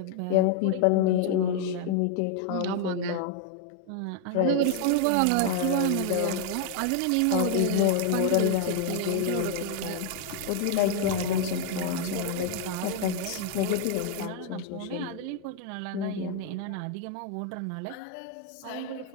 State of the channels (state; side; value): different; both; correlation 0.00